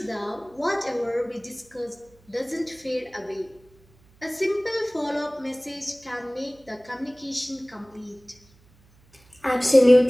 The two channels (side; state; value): right; noise; hum, 30 dB below the sound